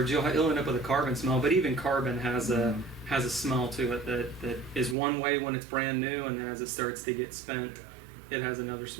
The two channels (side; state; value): left; drops out; at 5.0 s